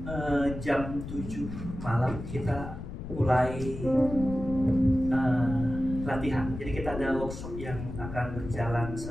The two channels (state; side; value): noise; left; rumble, 9 dB below the sound